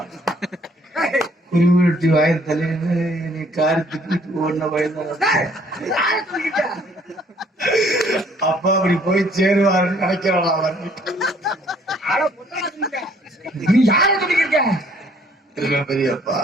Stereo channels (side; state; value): both; normal; correlation 0.62